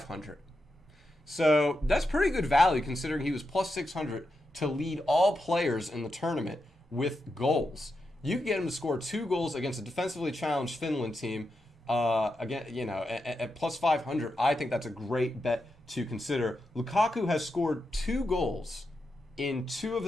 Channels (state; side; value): normal; both; correlation 0.87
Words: So that's pretty good value considering he was plus 600 to lead all players in the tournament with goals. You could get him to score 2 goals against a defensively challenged Finland team. Again, at plus 500, I think that's a great bet to consider. Lukaku has scored 2 goals in 2 of